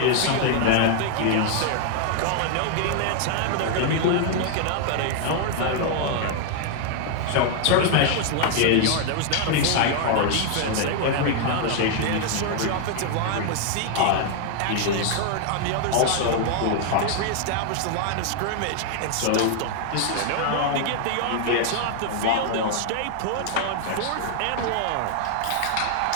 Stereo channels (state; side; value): different; both; correlation 0.00